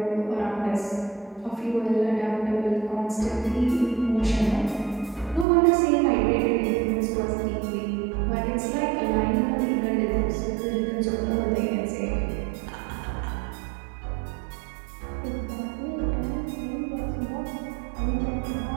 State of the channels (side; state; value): left; drops out; at 5.5 s